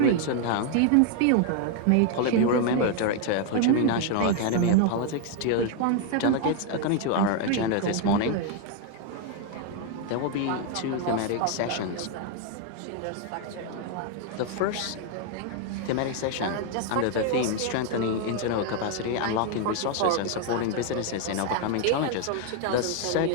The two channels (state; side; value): different; both; correlation 0.00